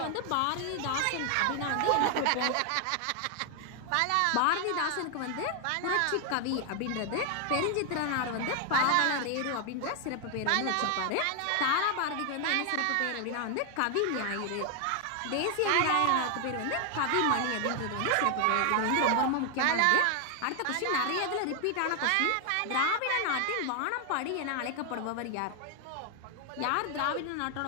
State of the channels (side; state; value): both; different; correlation 0.00